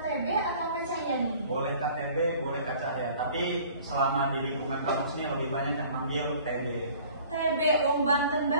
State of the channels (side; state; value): both; inverted; correlation -0.50